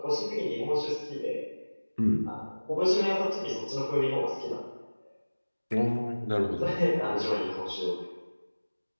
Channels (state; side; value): inverted; both; correlation -1.00